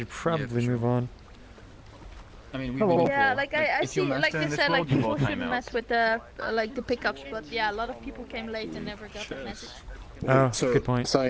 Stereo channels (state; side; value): identical; both; correlation 1.00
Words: probably move on. I mean, yeah, like I see, like you said, like people shouldn't mess with the like the pickups, but yeah, a lot of people came late and never got the message. Oh, so, good point.